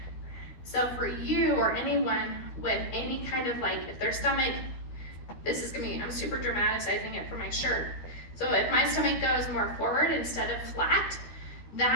So for you or anyone with any kind of like, if their stomach, this is gonna be, I'm super dramatizing it for my shirt. So if my stomach goes more forward instead of flat,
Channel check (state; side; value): late; right; 13 ms